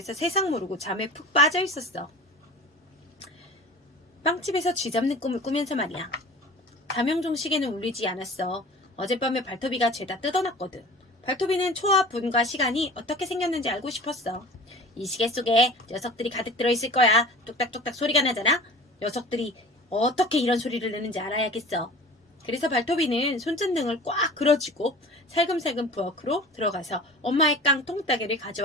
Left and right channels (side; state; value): both; normal; correlation 0.40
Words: 세상 모르고 잠에 푹 빠져 있었어. 빵집에서 쥐잡는 꿈을 꾸면서 말이야. 자명종 시계는 울리지 않았어. 어젯밤에 발토비가 죄다 뜯어놨거든. 발토비는 초와 분과 시간이 어떻게 생겼는지 알고 싶었어. 이 시계 속에 녀석들이 가득 들어있을 거야. 뚝딱뚝딱 소리가 나잖아. 녀석들이 어떻게 이런 소리를 내는지 알아야겠어. 그래서 발토비는 손전등을 꽉 그려쥐고 살금살금 부엌으로 들어가서 엄마의 깡통 따개를